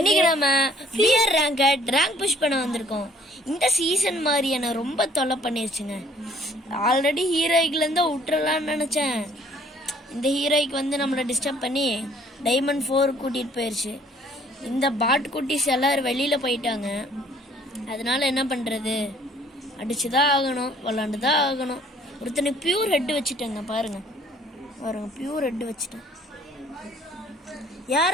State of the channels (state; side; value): normal; both; correlation 0.58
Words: நம்ம பியர் ரேங்க் புஷ் பண்ண வந்திருக்கோம். இந்த சீசன் மாதிரி என்ன ரொம்ப தொல்லை பண்ணிருச்சுங்க. ஆல்ரெடி ஹீரோய்க்குல இருந்து விட்டுறலாம்னு நினைச்சேன். இந்த ஹீரோய்க்கு வந்து நம்மளை டிஸ்டர்ப் பண்ணி டைமண்ட் 4 கூட்டிட்டு போயிருச்சு. இந்த பாட் குட்டிஸ் எல்லாரும் வெளியில போயிட்டாங்க. அதனால என்ன பண்றது, அடிச்சுதான் ஆகணும், விளாண்டுதான் ஆகணும். ஒருத்தனை பியூர் ஹெட் வச்சுட்டேங்க, பாருங்க பியூர் ஹெட் வச்சுட்டேன்.